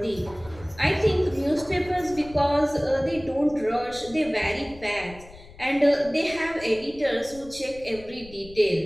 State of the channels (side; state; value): left; noise; rumble, 20 dB below the sound